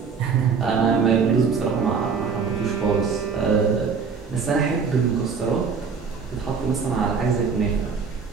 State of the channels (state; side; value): quieter; left; 5.6 dB